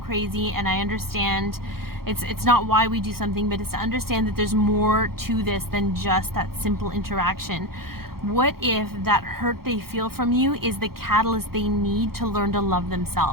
crazy, and I understand it's not why we do something, but it's to understand that there's more to this than just that simple interaction. What if that hurt they feel from you is the catalyst they need to learn to love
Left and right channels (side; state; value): left; late; 0.94 ms